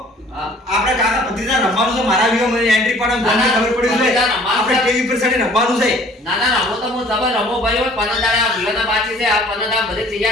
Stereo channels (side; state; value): both; normal; correlation 0.53